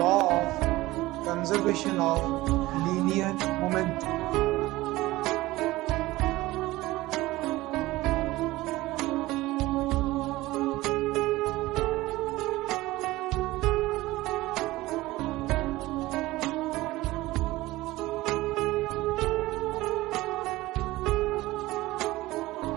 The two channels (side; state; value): left; quieter; 18.5 dB